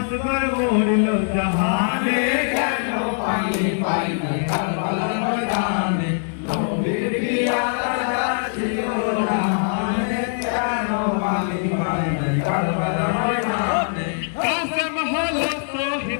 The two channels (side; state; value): right; silent; digital silence